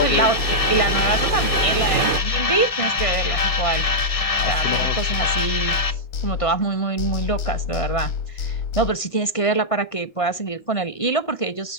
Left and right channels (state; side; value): late; right; 1.5 ms